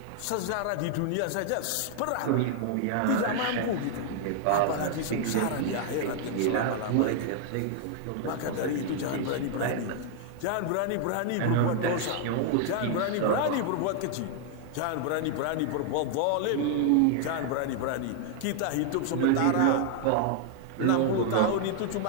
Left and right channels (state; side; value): different; both; correlation 0.00